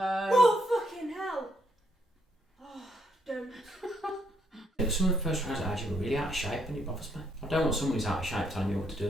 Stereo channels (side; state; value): both; normal; correlation 0.73